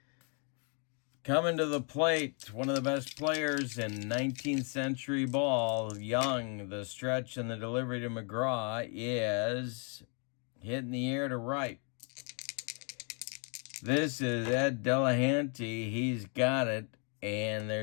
Coming to the plate, one of the best players in 19th century ball, Young. The stretch and the delivery to McGraw is hit in the air to right. This is Ed Delahanty. He's got it. And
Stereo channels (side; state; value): right; quieter; 38.8 dB